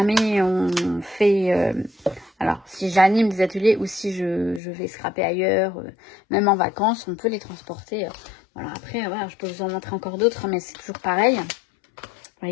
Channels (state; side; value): drops out; right; at 4.6 s